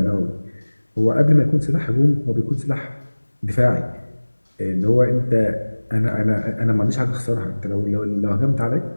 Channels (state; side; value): inverted; both; correlation -1.00